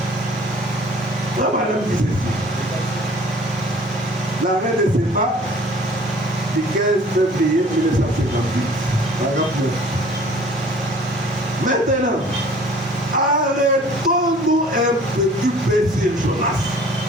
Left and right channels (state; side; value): normal; both; correlation 0.51